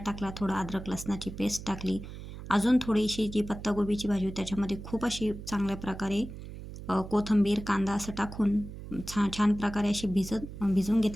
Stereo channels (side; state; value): right; noise; hum, 11 dB below the sound